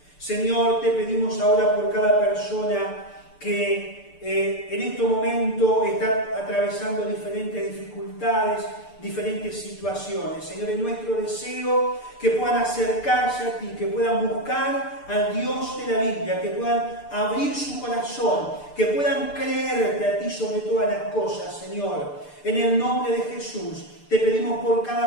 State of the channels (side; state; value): right; late; 6.8 ms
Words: Señor, te pedimos ahora por cada persona que en este momento está atravesando diferentes dificultades, diferentes situaciones. Señor, es nuestro deseo que puedan acercarse a ti, que puedan buscar al Dios de la Biblia, que puedan abrir su corazón, que puedan creerte a ti sobre todas las cosas, Señor. En el nombre de Jesús, te pedimos por